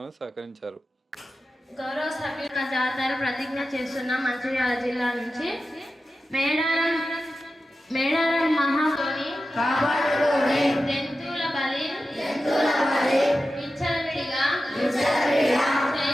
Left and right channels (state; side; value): normal; both; correlation 0.93